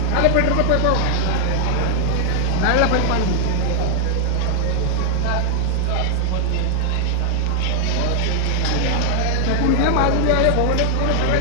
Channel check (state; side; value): different; both; correlation 0.00